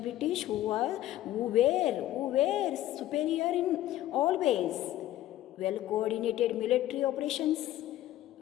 who were superior in all ways. Well-coordinated military operations,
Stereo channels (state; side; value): quieter; right; 14.1 dB